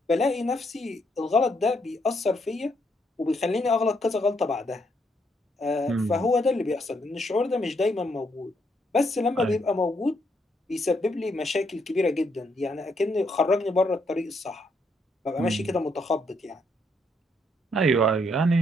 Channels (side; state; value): both; normal; correlation 0.75